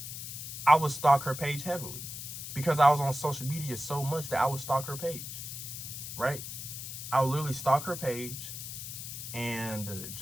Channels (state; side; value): noise; left; hiss, 8 dB below the sound